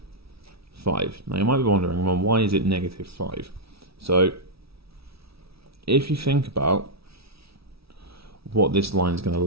5. Now you might be wondering, well, why is it negative 5? So if you think about what this line is going to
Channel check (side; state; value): left; late; 0.76 ms